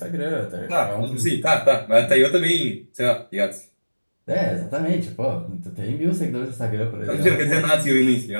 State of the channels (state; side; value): inverted; both; correlation -1.00